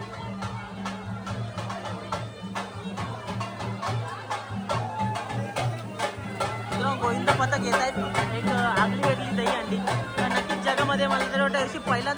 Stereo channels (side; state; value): both; identical; correlation 1.00